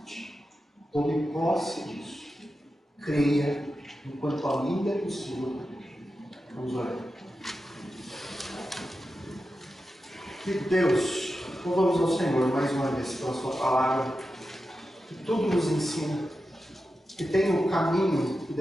Tome posse disso. Creia enquanto ainda é possível. Vamos orar. Querido Deus, louvamos ao Senhor mais uma vez pela sua palavra, que tudo nos ensina, que tem o caminho que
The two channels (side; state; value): both; normal; correlation 0.91